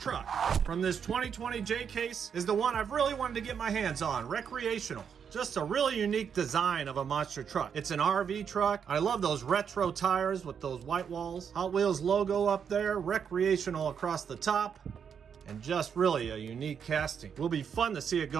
from this 2020 J case is the one I've really wanted to get my hands on, Recreational. Just a really unique design of a monster truck. It's an RV truck. I love those retro tires with those white walls. Hot Wheels logo up there, Recreational across the top, and just really a unique casting. Will be fun to see it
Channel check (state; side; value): quieter; left; 7.3 dB